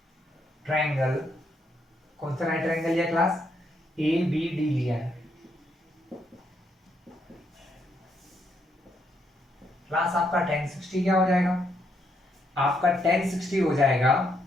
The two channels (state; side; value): normal; both; correlation 0.76